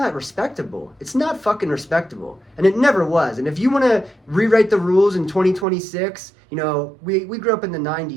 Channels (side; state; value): left; drops out; at 5.7 s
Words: respectable. It's not fucking respectable. And it never was. And if you want to rewrite the rules in 2026, you know, we grew up in the